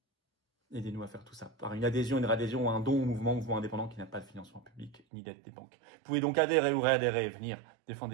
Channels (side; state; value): left; drops out; at 5.0 s